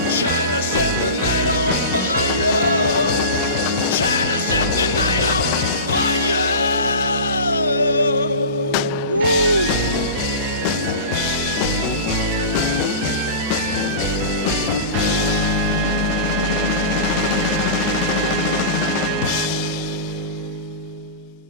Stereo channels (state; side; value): inverted; both; correlation -0.30